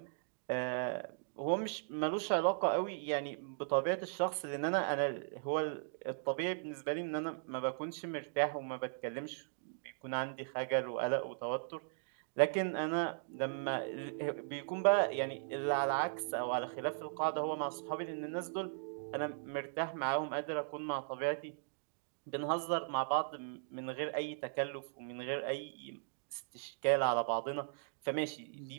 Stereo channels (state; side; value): silent; left; digital silence